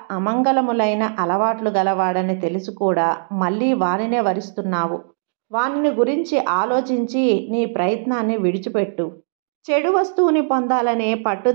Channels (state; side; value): silent; left; digital silence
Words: అమంగళములైన అలవాట్లు గలవాడని తెలిసి కూడా మళ్ళీ వానినే వరిస్తున్నావు. వానిని గురించి ఆలోచించి నీ ప్రయత్నాన్ని విడిచిపెట్టు. చెడు వస్తువుని పొందాలనే